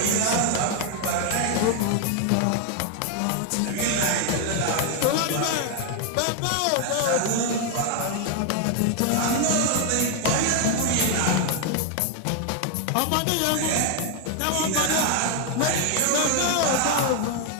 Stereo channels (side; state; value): both; different; correlation 0.00